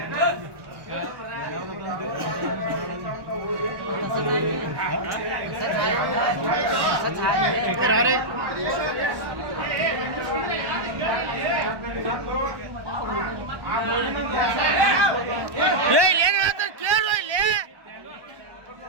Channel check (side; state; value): left; late; 1.1 ms